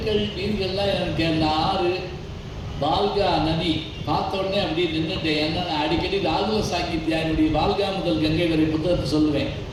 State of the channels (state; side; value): identical; both; correlation 1.00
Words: வீடுகள்லாம் எனக்கு அந்த ஆறு பால்கா நதி பார்த்த உடனே அப்படியே நின்றுட்டேன். ஏன்னா நான் அடிக்கடி ராகுல சாங்கித்யாருடைய வால்கா முதல் கங்கை வரை புத்தகத்தை சொல்லுவேன்.